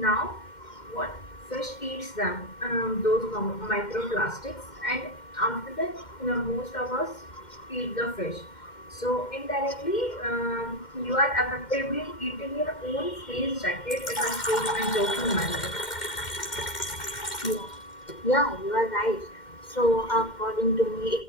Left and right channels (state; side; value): late; right; 2.1 ms